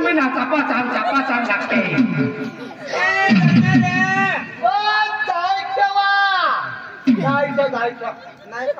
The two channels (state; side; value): identical; both; correlation 1.00